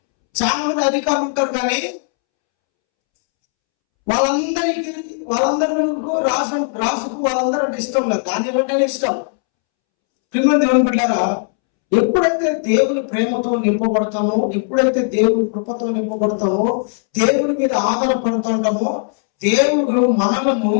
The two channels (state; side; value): silent; right; 68 dB below the other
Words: చాలా మంది అధికారులు ఉంటారు కానీ వాళ్ళందరూ రాజుకు వాళ్ళందరూ అంటే ఇష్టం లేదు. దానియేలు అంటేనే ఇష్టం. ప్రియమైన దేవుని బిడ్డలారా, ఎప్పుడైతే దేవుని ప్రేమతో నింపబడతామో, ఎప్పుడైతే దేవుని కృపతో నింపబడతామో, దేవుని మీద ఆధారపడుతుంటామో, దేవుడు మనలను